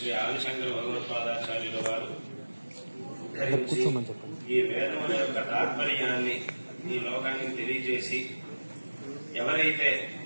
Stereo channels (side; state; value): both; inverted; correlation -1.00